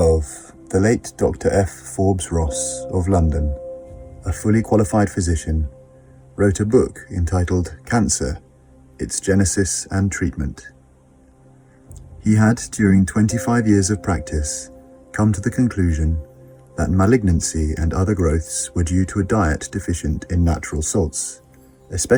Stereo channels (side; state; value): both; identical; correlation 1.00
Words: the late Dr. F. Forbes Ross of London, a fully qualified physician, wrote a book entitled Cancer, Its Genesis and Treatment. He had, during 25 years of practice, come to the conclusion that malignancy and other growths were due to a diet deficient in natural salts,